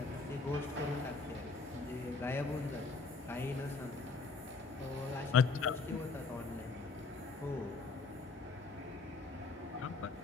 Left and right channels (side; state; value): right; quieter; 4.1 dB